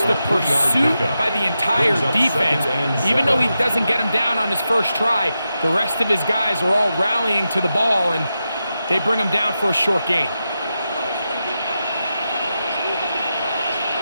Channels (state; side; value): inverted; both; correlation -0.89